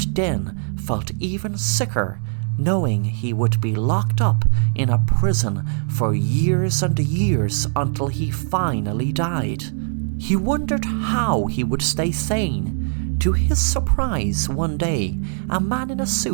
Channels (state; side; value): silent; left; digital silence